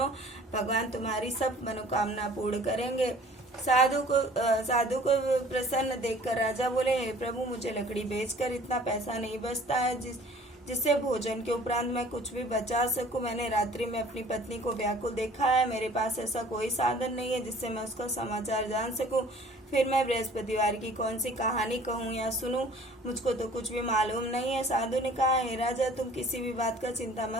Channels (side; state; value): both; normal; correlation 0.51